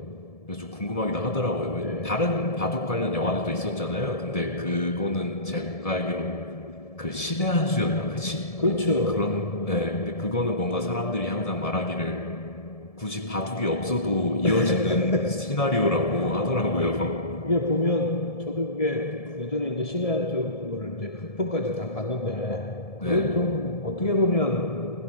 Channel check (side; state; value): right; late; 1.7 ms